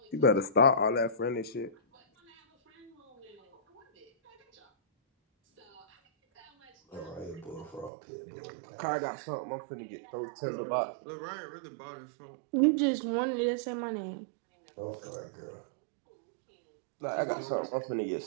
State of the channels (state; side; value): drops out; left; at 7.9 s